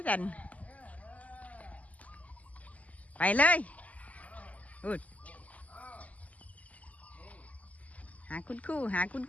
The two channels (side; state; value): right; late; 0.073 ms